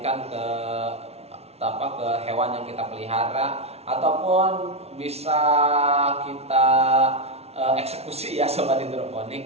ke hewan yang kita pelihara, ataupun bisa kita eksekusi ya sobat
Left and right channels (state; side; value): late; left; 0.31 ms